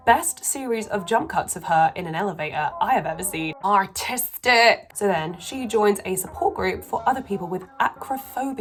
best series of jump cuts of her in an elevator I have ever seen. Artistic! So then she joins a support group for other people with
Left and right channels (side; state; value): both; identical; correlation 1.00